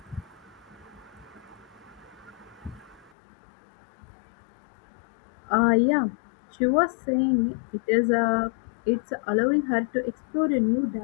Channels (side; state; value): right; drops out; at 3.1 s